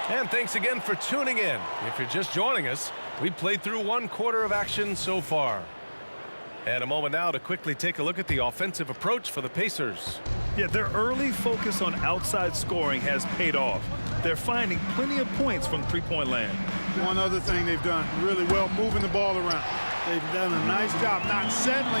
And thanks again for tuning in. If you're just joining us, we played through 1 quarter of action so far. And a moment now to quickly take a look at the offensive approach for the Pacers. Yeah, their early focus on outside scoring has paid off. They're finding plenty of points from three-point land. One other thing they've done really well, moving the ball around. They've done a nice job not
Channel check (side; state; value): both; inverted; correlation -1.00